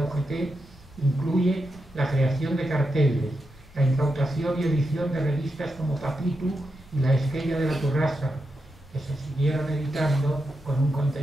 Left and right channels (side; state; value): left; noise; rumble, 24 dB below the sound